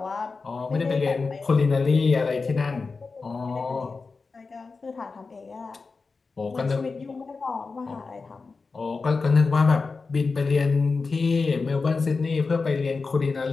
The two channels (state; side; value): quieter; right; 4.3 dB